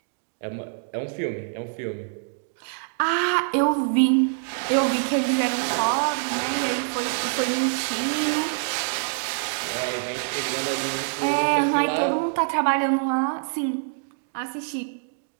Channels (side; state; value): left; silent; digital silence